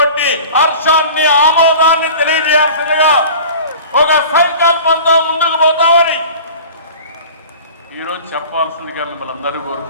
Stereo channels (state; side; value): inverted; both; correlation -0.40